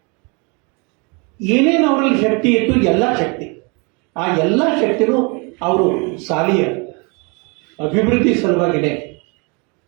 ಏನೇನು ಅವರಲ್ಲಿ ಶಕ್ತಿ ಇತ್ತು, ಎಲ್ಲ ಶಕ್ತಿ, ಆ ಎಲ್ಲ ಶಕ್ತಿನೂ ಅವರು ಶಾಲೆಯ ಅಭಿವೃದ್ಧಿ ಸಲುವಾಗಿನೇ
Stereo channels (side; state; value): left; quieter; 31.7 dB